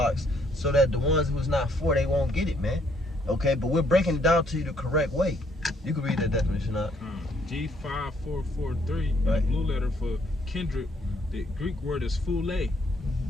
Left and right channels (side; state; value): both; normal; correlation 0.68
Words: so that the ones who's not for, they won't get it, man. Okay, but we're breaking it down to you the correct way. You can read that definition out. G5443, the blue letter for kindred, the Greek word is phule.